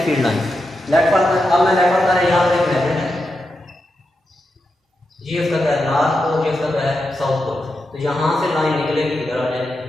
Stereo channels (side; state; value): both; normal; correlation 0.87